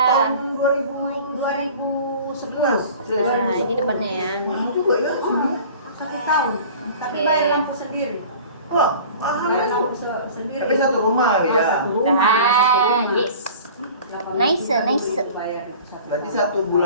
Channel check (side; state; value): both; inverted; correlation -0.43